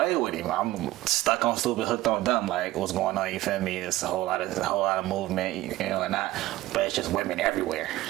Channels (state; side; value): quieter; left; 16.8 dB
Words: with him. I'm stuck on stupid, hooked on dumb. Like, what's going on? You feel me? It's a whole lot of movement, and not. But it's just women everywhere.